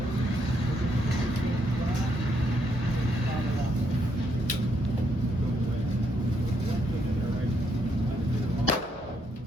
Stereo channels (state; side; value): normal; both; correlation 0.75